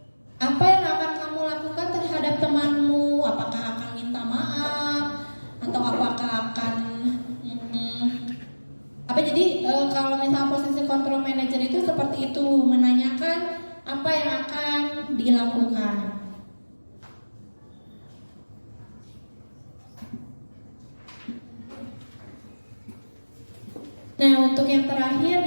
apa yang akan kamu lakukan terhadap temanmu? Apakah akan minta maaf atau apakah akan jadi kalau misalnya posisi kontrol manajer itu seperti itu, menanyakan apa yang akan dilakukan. Nah, untuk yang terakhir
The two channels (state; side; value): inverted; both; correlation -1.00